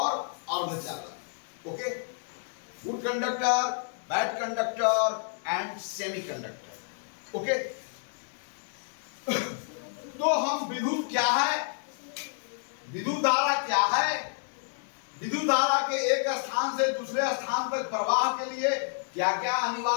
अर्धचालक। Okay, good conductor, bad conductor and semi conductor. Okay, तो हम विद्युत क्या है, विद्युत धारा क्या है, विद्युत धारा के एक स्थान से दूसरे स्थान तक प्रवाह के लिए क्या क्या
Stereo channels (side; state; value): right; silent; 58 dB below the other